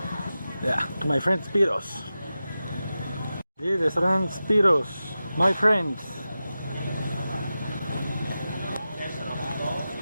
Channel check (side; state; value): both; inverted; correlation -0.93